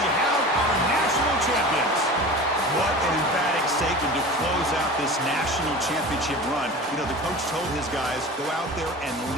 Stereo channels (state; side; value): normal; both; correlation 0.35